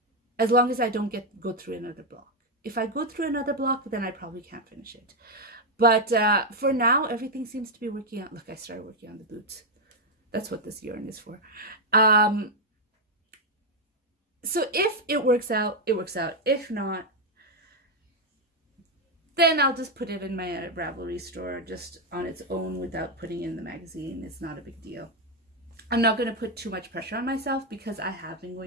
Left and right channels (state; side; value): normal; both; correlation 0.03